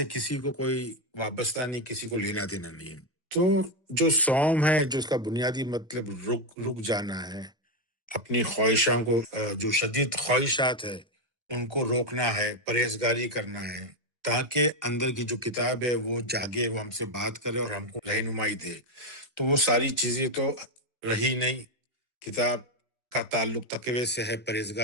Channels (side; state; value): both; normal; correlation 0.07